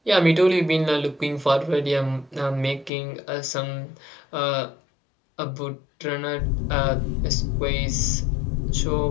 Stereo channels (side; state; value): right; drops out; at 2.9 s